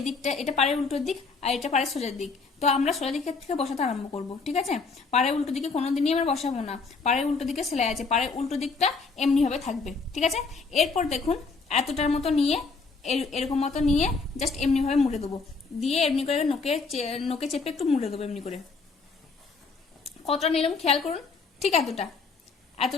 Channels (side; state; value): right; quieter; 4.4 dB